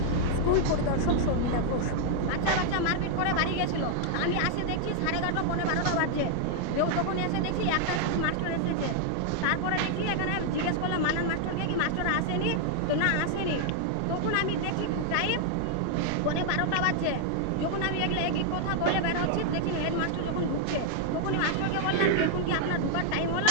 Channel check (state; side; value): different; both; correlation 0.00